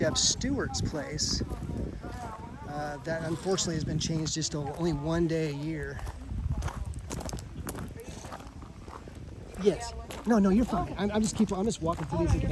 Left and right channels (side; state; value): both; identical; correlation 1.00